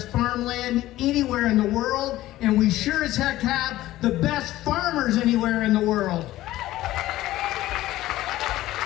farmland anywhere in the world, and we sure as heck have the best farmers anywhere in the world.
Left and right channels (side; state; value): right; quieter; 15.6 dB